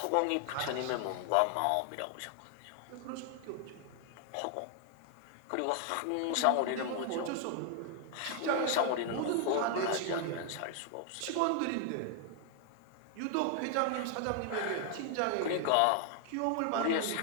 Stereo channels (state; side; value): different; both; correlation 0.00